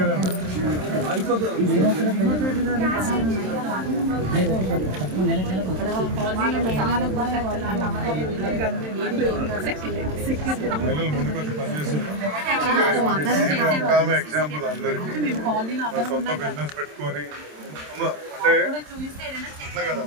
మహిళలు ముందుకు వచ్చి పనిచేస్తారు. ఒక ఆమె ఎగ్జాంపుల్ అందరికీ సొంత బిజినెస్ పెట్టుకొని అంటే అట్లా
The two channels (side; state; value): left; late; 27 ms